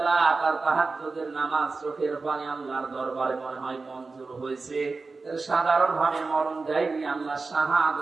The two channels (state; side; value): quieter; left; 4.0 dB